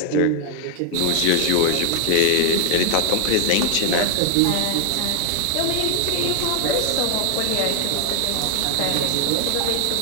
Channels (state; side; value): different; both; correlation 0.00